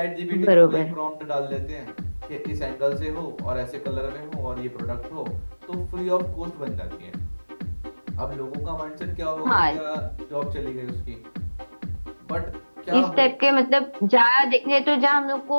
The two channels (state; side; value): inverted; both; correlation -1.00